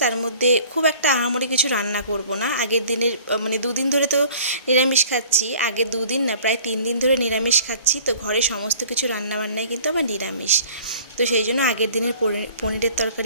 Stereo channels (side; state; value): both; inverted; correlation -0.49